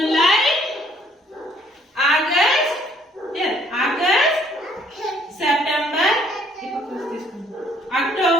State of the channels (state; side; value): normal; both; correlation 0.63